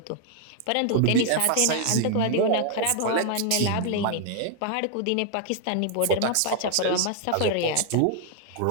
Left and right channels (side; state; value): both; different; correlation 0.00